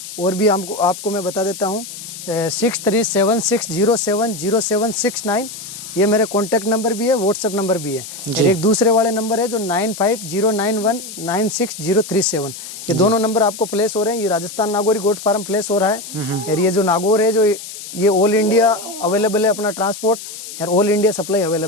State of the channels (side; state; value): left; noise; hiss, 11 dB below the sound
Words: और भी आपको मैं बता देता हूँ 6376070769, ये मेरे कॉन्टैक्ट नंबर भी है, व्हाट्सएप नंबर भी है। और एक दूसरे वाले नंबर है जो 9509196037। ये दोनों नंबर आपको प्लेस हो रहे हैं। ये Rajasthan Nagauri goat farm place हो रहा है। और ये जो नागौर है जो ये ऑल इंडिया अवेलेबल है अपना ट्रांसपोर्ट, और ऑल इंडिया सप्लाई